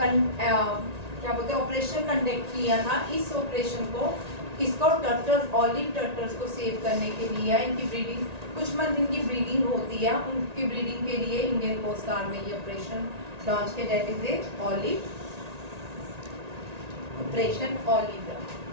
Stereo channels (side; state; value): left; late; 1.9 ms